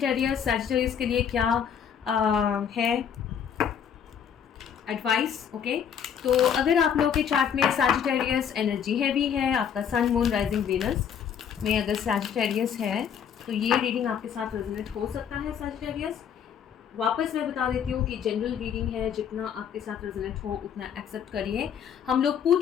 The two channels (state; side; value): quieter; right; 8.1 dB